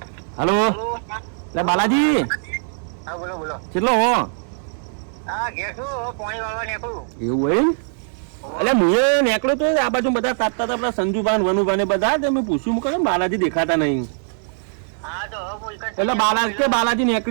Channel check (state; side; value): silent; left; 65 dB below the other